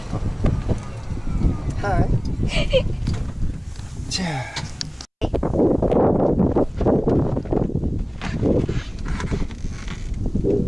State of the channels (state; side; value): identical; both; correlation 1.00